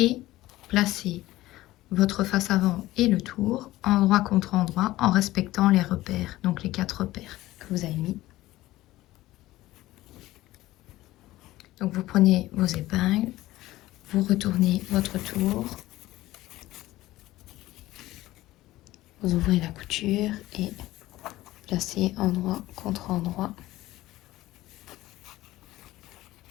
placer votre face avant et le tour endroit contre endroit en respectant les repères, donc les 4 repères que vous avez mis. Donc vous prenez vos épingles, vous retournez votre tour, vous ouvrez la couture et placez endroit contre endroit.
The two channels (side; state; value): right; quieter; 16.8 dB